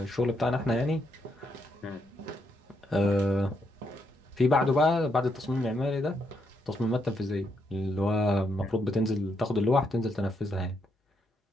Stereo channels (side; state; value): both; normal; correlation 0.77